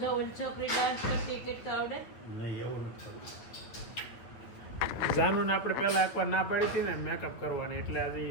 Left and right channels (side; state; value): right; late; 9.0 ms